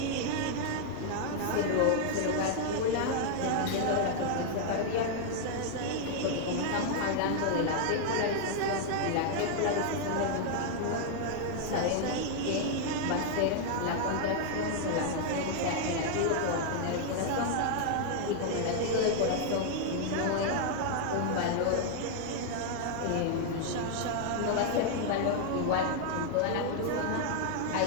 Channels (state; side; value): different; both; correlation 0.00